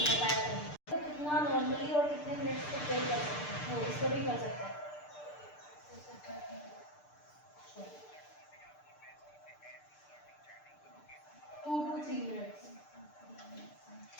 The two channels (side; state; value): right; late; 6.7 ms